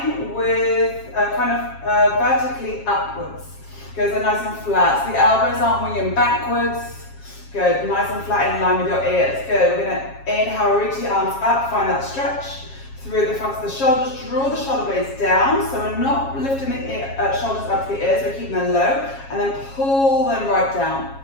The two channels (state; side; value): late; right; 7.4 ms